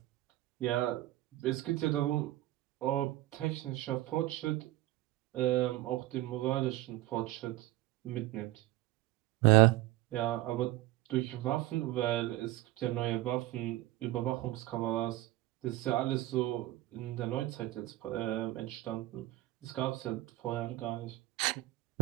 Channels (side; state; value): left; quieter; 16.9 dB